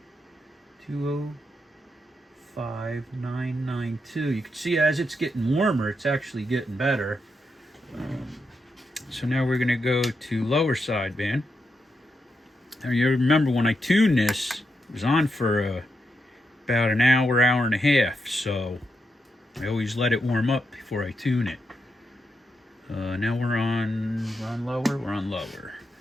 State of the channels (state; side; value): normal; both; correlation 0.84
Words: 205,992. You can see as it's getting warmer, it's actually getting better. So now we're going to go to lower sideband. Now you remember when I tuned this, it was on for about an hour, hour and a half. So I always let it warm up before I tune it. Now we're on lower. We're on lower.